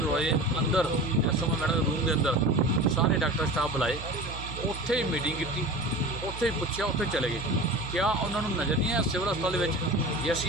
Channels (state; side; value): noise; right; hum, 10 dB below the sound